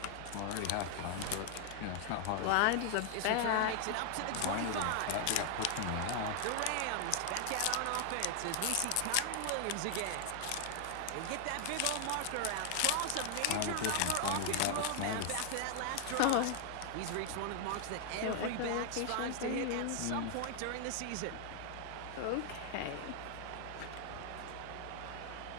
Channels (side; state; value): both; different; correlation 0.00